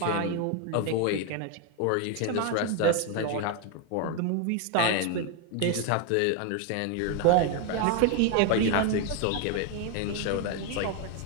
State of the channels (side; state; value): both; different; correlation 0.01